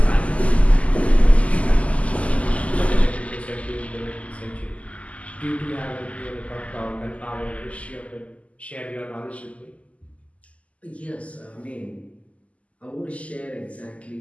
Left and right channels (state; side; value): late; right; 0.067 ms